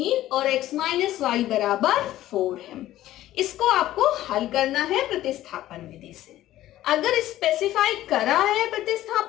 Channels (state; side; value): quieter; right; 14.2 dB